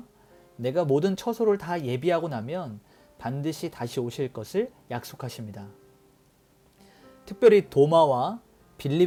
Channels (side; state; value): both; identical; correlation 1.00